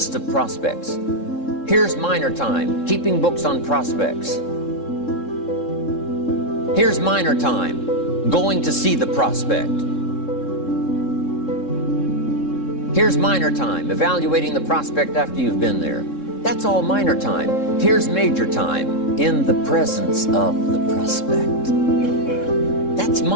of prospects. Here's minor time, keeping books on prospects. Here's minor time, going to see the prospect. Here's minor time, evaluating the prospect after you've been there. That's all minor time. Here's major time, in the presence of the prospect.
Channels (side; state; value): right; late; 3.7 ms